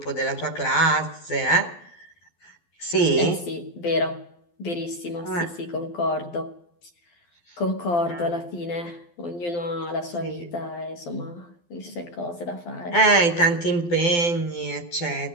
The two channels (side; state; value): right; late; 12 ms